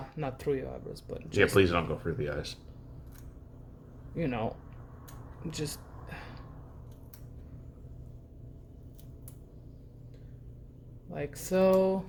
not through your eyebrows, but just, Yeah, please don't go through the eyes. Just like so,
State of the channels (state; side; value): identical; both; correlation 1.00